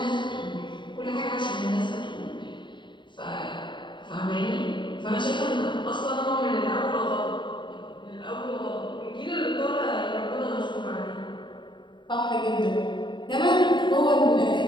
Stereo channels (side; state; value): right; late; 0.23 ms